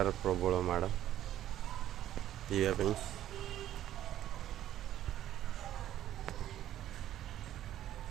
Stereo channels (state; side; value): quieter; left; 12.3 dB